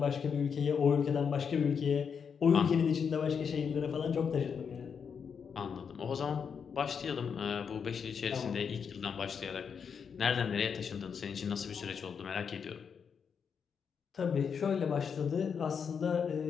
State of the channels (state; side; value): quieter; right; 6.6 dB